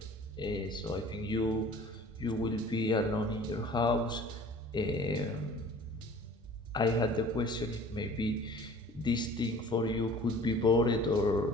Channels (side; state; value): both; normal; correlation 0.47